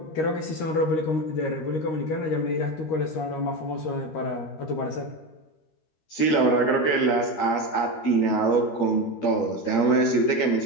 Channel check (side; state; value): right; late; 12 ms